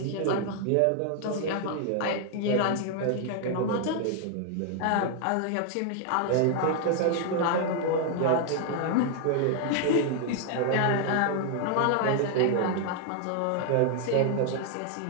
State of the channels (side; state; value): both; different; correlation 0.00